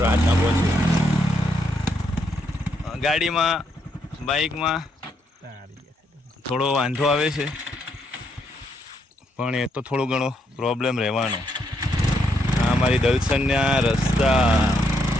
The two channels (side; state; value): both; normal; correlation 0.76